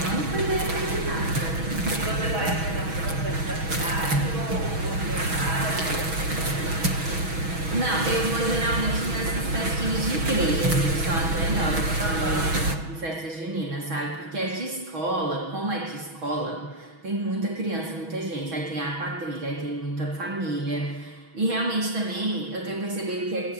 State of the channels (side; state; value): left; late; 6.2 ms